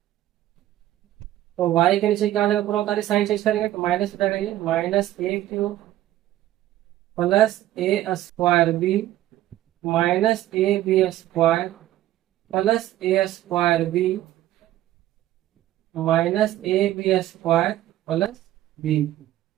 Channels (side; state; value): left; quieter; 14.0 dB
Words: तो y के नीचे क्या आ जाएगा, पूरा उतारे साइन चेंज करेंगे तो माइनस हो जाएगा, ये minus A cube plus A square b minus A B square plus A square b minus A B square plus b.